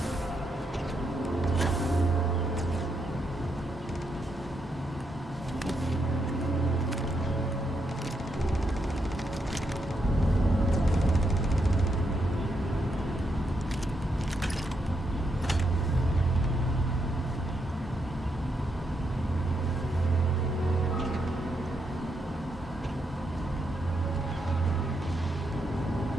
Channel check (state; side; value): normal; both; correlation 0.80